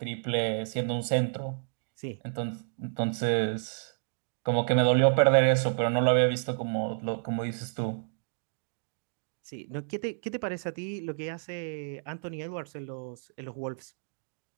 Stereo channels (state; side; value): silent; left; digital silence